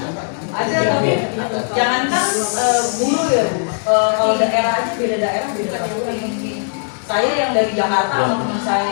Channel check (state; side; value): silent; right; digital silence